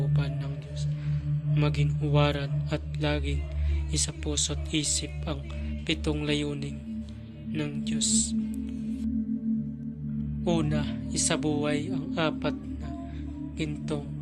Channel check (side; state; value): both; identical; correlation 1.00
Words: ng Diyos. Maging huwaran at laging isa puso't isip ang 7 layunin ng Diyos. Una, isabuhay ang 4 na gintong